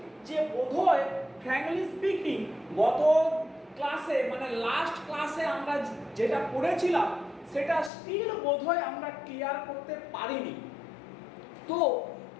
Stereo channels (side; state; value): right; drops out; at 7.9 s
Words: যে বোধহয় ফ্র্যাঙ্কলি স্পিকিং গত ক্লাসে মানে লাস্ট ক্লাসে আমরা যেটা পড়েছিলাম সেটা স্টিল বোধহয় আমরা ক্লিয়ার করতে পারিনি। তো